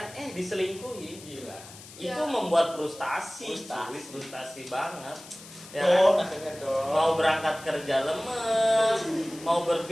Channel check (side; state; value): left; noise; hiss, 17 dB below the sound